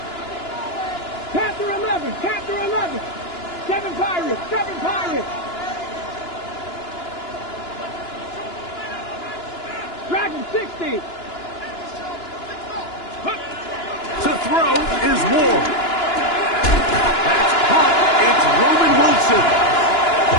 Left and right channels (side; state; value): right; late; 2.9 ms